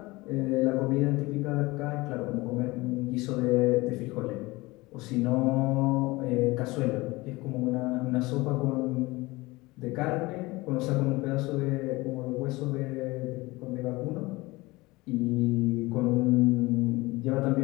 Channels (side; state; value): right; quieter; 21.8 dB